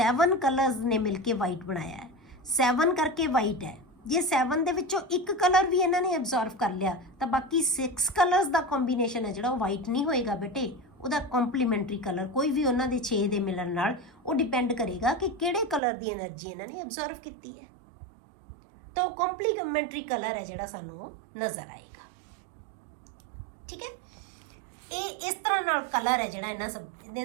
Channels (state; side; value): drops out; left; at 15.8 s